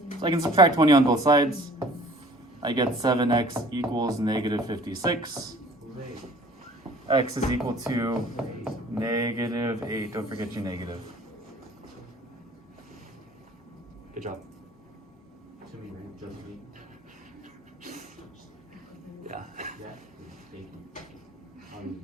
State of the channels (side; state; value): both; normal; correlation 0.49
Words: So I can subtract 20 on both sides. I get 7x equals negative 56. Who's 8? X is equal to Who's 8? negative 8. Don't forget your negative. Good job. To me, right? Just me. Yeah. Yeah. Thank you. All you